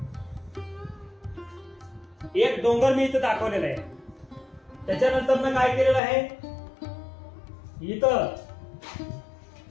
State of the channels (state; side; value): drops out; right; at 6.0 s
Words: एक डोंगर मी इथं दाखवलेला आहे। त्याच्यानंतर मी काय केलेलं आहे, इथं